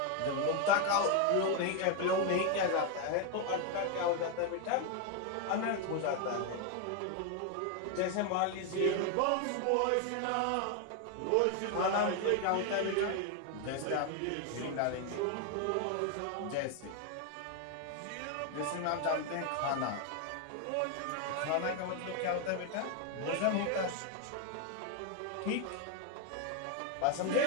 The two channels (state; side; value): different; both; correlation 0.01